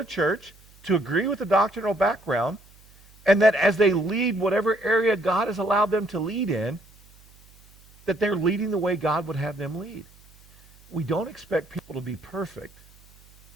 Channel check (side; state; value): right; noise; hum, 27 dB below the sound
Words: church, to agree with the doctrinal background, and that as they lead whatever area God has allowed them to lead in, that they're leading the way God would have them lead. We don't expect people to be perfect,